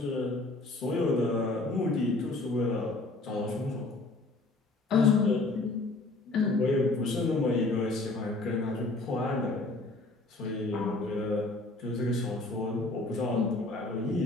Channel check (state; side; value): quieter; right; 3.1 dB